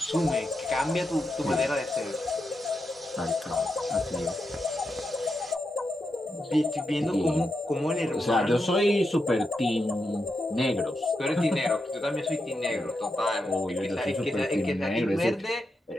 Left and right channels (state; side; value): normal; both; correlation 0.86